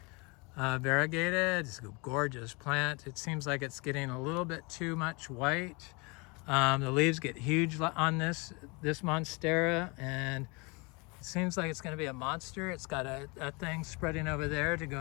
variegated. It's a gorgeous plant. It seems like it's getting a little bit too much white. The leaves get huge on this Monstera, and it seems like it's going to be a monster. It's got a thing spreading over there to go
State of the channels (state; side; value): quieter; right; 28.7 dB